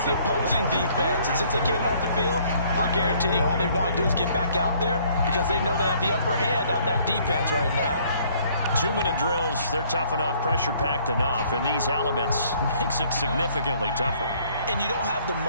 the opposing defense. And since they came off the field, I'll guarantee you all they want to do is get back out there because they know they have the upper hand on that defense right now. 2-minute drills, they're tough enough, pressure-packed enough, and these elements makes it significantly tougher. And you don't have the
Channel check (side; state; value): both; inverted; correlation -0.61